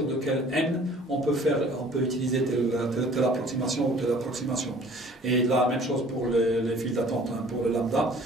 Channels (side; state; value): both; normal; correlation 0.51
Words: de quel n on peut utiliser telle approximation ou telle approximation. Et la même chose pour les files d'attente, pour le lambda.